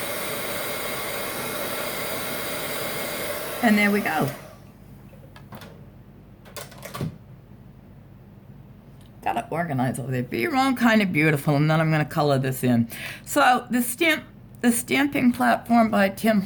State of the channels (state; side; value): identical; both; correlation 1.00